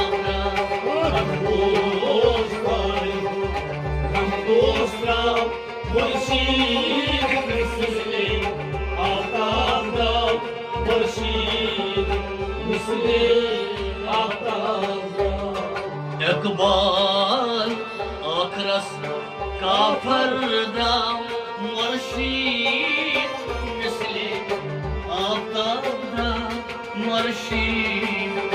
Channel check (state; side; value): identical; both; correlation 1.00